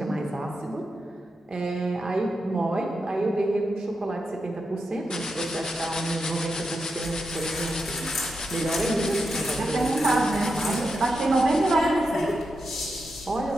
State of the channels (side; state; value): both; normal; correlation 0.87